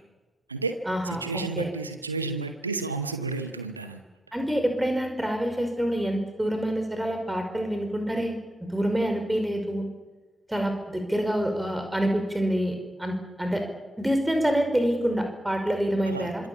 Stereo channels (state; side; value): normal; both; correlation 0.82